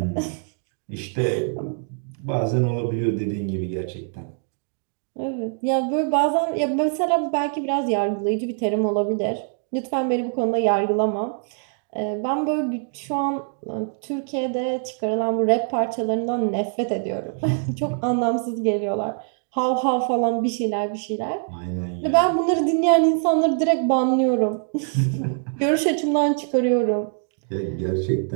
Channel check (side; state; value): left; silent; 62 dB below the other